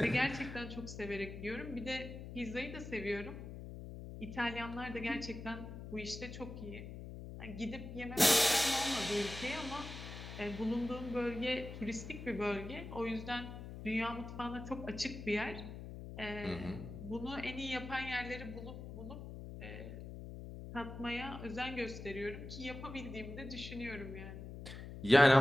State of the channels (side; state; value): left; noise; hum, 10 dB below the sound